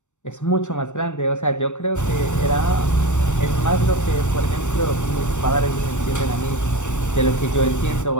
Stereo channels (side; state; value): right; late; 0.84 ms